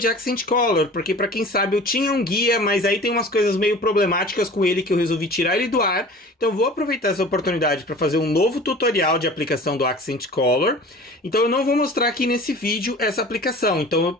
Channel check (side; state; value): both; normal; correlation 0.42